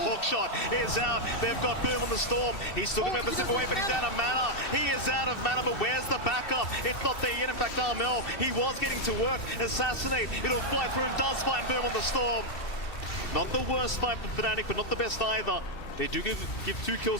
hook shot is out. They've got Boom in the storm. He's still going to be able to zip away, but he's out of mana. He is out of mana, but where's the backup? It's not there yet. In fact, Armel, he was getting to work. Assassinate. It'll fly through and does find Boom in the storm. Not the worst fight for FNATIC, but not the best either. They do give 2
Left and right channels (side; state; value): right; late; 3.2 ms